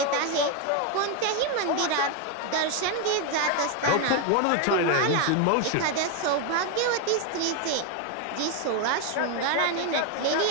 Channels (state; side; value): different; both; correlation 0.01